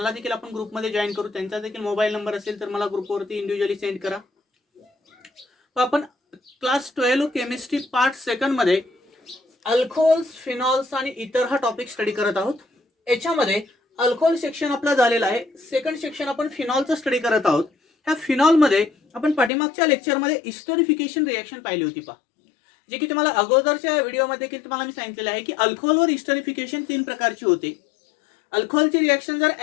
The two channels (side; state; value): right; drops out; at 19.5 s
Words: देखील आपण ग्रुपमध्ये जॉईन करू. त्यांचा देखील मोबाईल नंबर असेल तर मला ग्रुपवरती इंडिव्हिज्युअली सेंड करा. आपण क्लास 12 केमिस्ट्री पार्ट सेकंड मध्ये अल्कोहोल्स, फिनॉल्स आणि इतर हा टॉपिक स्टडी करत आहोत. याच्यामध्ये अल्कोहोल सेक्शन आपला झालेला आहे. सेकंड सेक्शन आपण फिनॉलचं स्टडी करत आहोत. ह्या फिनॉलमध्ये आपण पाठीमागच्या लेक्चरमध्ये इस्टरिफिकेशन रिएक्शन पाहिली होती पहा. जे की तुम्हाला अगोदरच्या व्हिडिओमध्ये की तुम्हाला मी सांगितलेलं आहे की अल्कोहोलवर इस्टरिफिकेशन 3 प्रकारची होते. अल्कोहोलची रिएक्शन जर